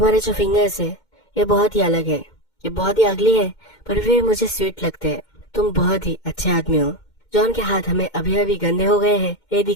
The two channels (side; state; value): right; late; 2.1 ms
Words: जो फिंगर्स है ये बहुत ही अलग है, ये बहुत ही अगली है, पर वे मुझे स्वीट लगते हैं। तुम बहुत ही अच्छे आदमी हो। जॉन के हाथ हमें अभी अभी गंदे हो गए हैं ये